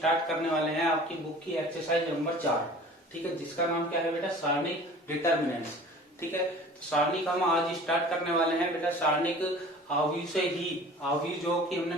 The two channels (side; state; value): both; normal; correlation 0.44